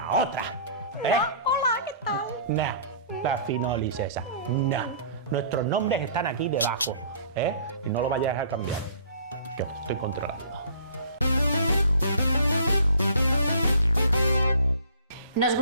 otra. Hola, ¿qué tal? No, la finolis esa. No. Nuestros nombres están aquí debajo. Y no lo vayáis a cambiar, que os estoy controlando. Nos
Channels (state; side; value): inverted; both; correlation -0.50